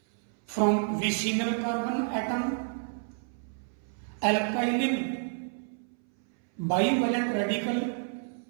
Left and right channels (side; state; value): left; silent; 58 dB below the other